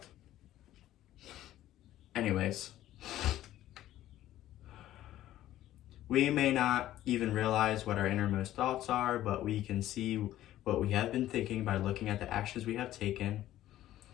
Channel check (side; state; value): right; quieter; 13.7 dB